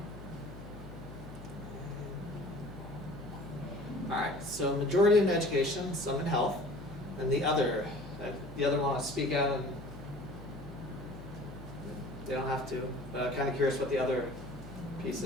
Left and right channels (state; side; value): noise; left; hum, 15 dB below the sound